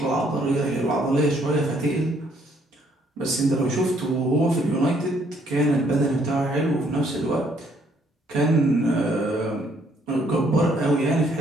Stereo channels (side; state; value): both; normal; correlation 0.67